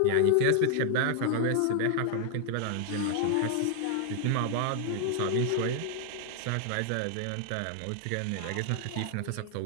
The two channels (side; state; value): both; different; correlation 0.00